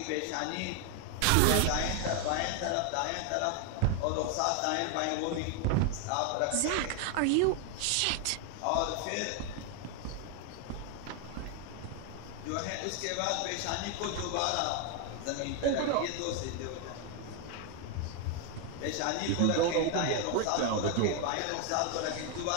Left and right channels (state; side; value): different; both; correlation 0.01